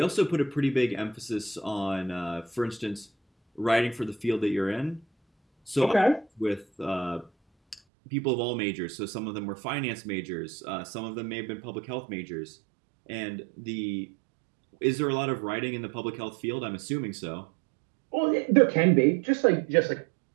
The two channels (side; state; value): left; drops out; at 7.8 s